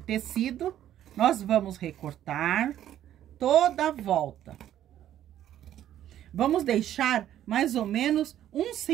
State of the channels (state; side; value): quieter; left; 11.6 dB